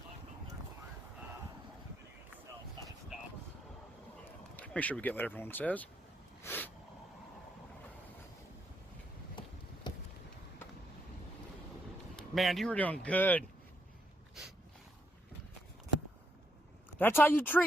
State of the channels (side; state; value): both; normal; correlation 0.77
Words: Make sure we get what everyone says. Man, you were doing good. That's how you